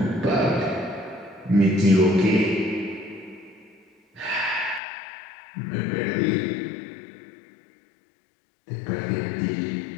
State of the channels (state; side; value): drops out; right; at 4.8 s